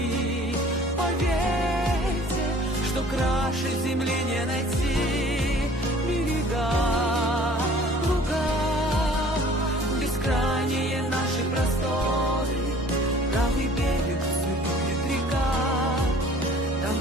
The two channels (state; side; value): normal; both; correlation 0.51